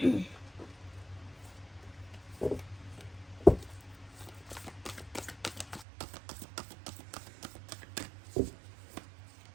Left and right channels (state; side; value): drops out; left; at 5.9 s